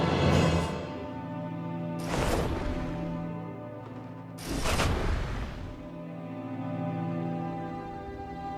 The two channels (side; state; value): both; identical; correlation 1.00